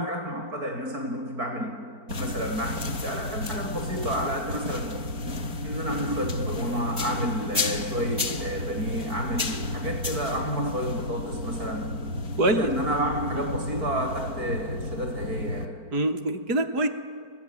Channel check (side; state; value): left; late; 4.5 ms